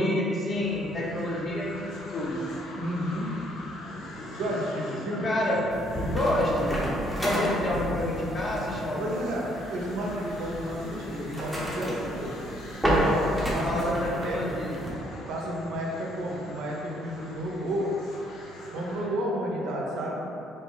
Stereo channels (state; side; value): normal; both; correlation 0.67